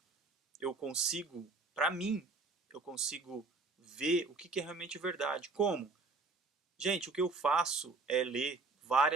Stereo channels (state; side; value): quieter; left; 3.7 dB